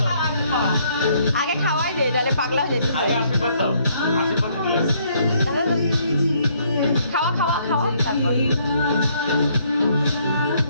দাও আগে খাওয়াই দে তাহলে পাগলা হয়ে যেতে আগে আশীর্বাদ দাও আশীর্বাদ দিলে খাওয়া খাওয়া খাওয়া তারপর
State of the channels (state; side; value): inverted; both; correlation -0.67